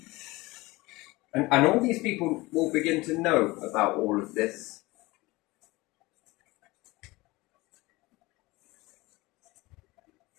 And all these people will begin to know about all of this.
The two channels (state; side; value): quieter; right; 21.4 dB